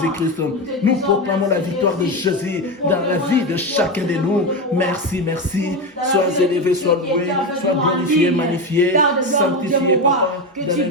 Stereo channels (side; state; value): both; normal; correlation 0.16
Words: Nous proclamons la victoire de Jésus dans la vie de chacun de nous. Merci, merci. Sois élevé, sois loué, sois glorifié, magnifié, sanctifié, Papa, dans le nom